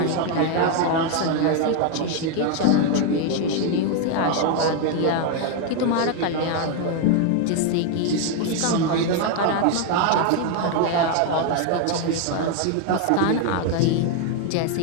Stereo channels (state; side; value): different; both; correlation 0.01